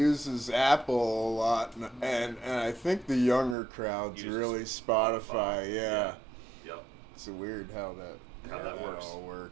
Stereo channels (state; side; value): drops out; left; at 3.6 s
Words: Apple a lot, and I think the younger crowd's really Spotify. Yeah. Yep. It's weird how that works. all